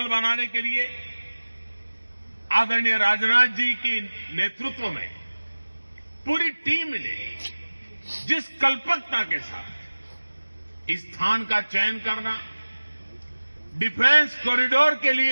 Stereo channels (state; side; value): inverted; both; correlation -1.00